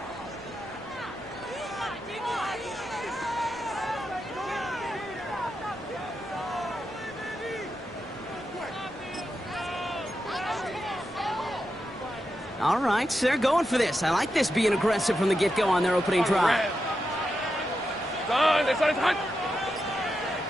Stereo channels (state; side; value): normal; both; correlation 0.87